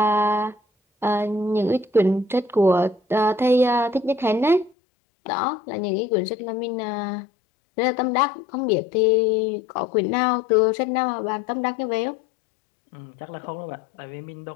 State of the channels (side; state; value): right; drops out; at 4.8 s